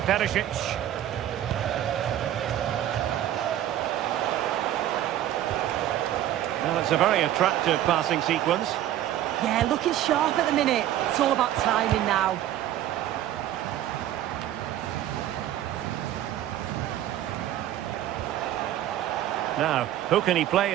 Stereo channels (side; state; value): left; quieter; 12.4 dB